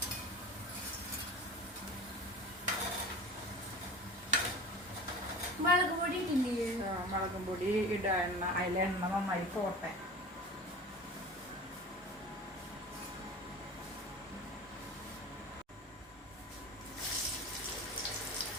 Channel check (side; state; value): both; normal; correlation 0.35